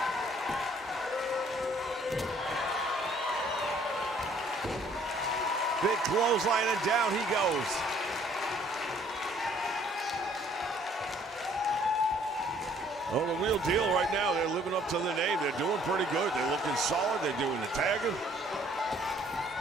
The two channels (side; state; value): both; normal; correlation 0.60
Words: Big clothesline, and down he goes. Well, the real deal right now, they're living up to the name. They're doing pretty good. They're looking solid. They're doing the tagging.